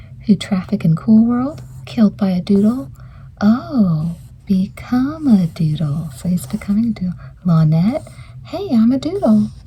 who traffic in Cool World? Killed by a doodle? Oh, become a doodle. So he's becoming a doodle. Lynette? Hey, I'm a doodle.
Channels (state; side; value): identical; both; correlation 1.00